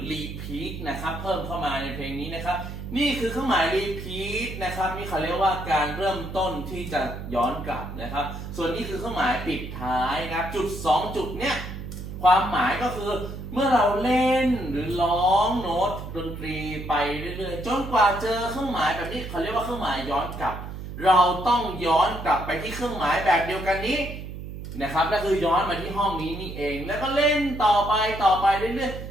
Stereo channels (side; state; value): right; noise; hum, 9 dB below the sound